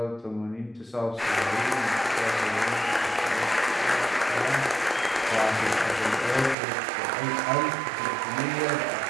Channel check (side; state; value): left; drops out; at 6.6 s